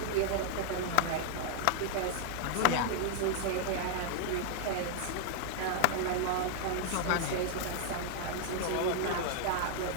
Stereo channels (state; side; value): different; both; correlation 0.00